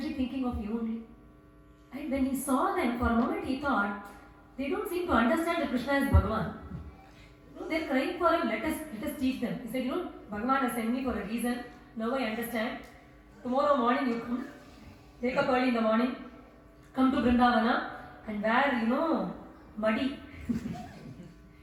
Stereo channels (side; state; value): both; identical; correlation 1.00